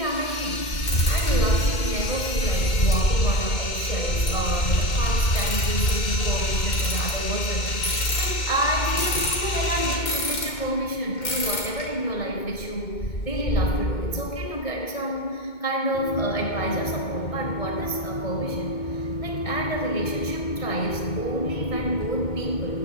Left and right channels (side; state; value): right; late; 2.2 ms